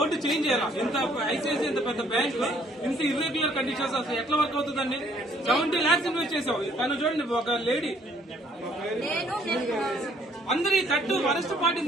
చేంజ్ చేయాలి. ఇంత ఐసిఐసిఐ ఇంత పెద్ద బ్యాంక్ ఇంత ఇర్రెగ్యులర్ కండిషన్స్ అసలు ఎట్లా వర్క్ అవుతుందండి? 70 lakhs ఇన్వెస్ట్ చేసావు. తను చూడండి, ఒక లేడీ అందరి తట్టు వరస్ట్ పార్టీ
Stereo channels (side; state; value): both; normal; correlation 0.63